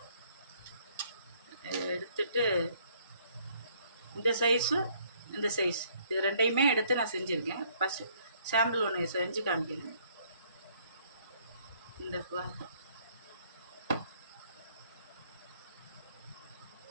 எடுத்துட்டு இந்த சைஸும் இந்த சைஸ் இது ரெண்டையுமே எடுத்து நான் செஞ்சுருக்கேன். ஃபஸ்ட்டு சாம்பிள் ஒன்று செஞ்சு காமிக்கிறேன். இந்த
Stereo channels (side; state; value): both; inverted; correlation -0.64